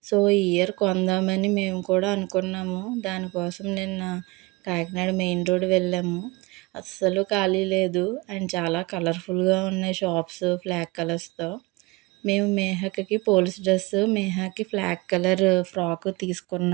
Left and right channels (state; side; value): quieter; left; 24.3 dB